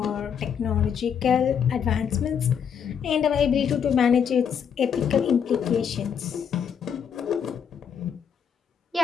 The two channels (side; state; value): right; quieter; 7.7 dB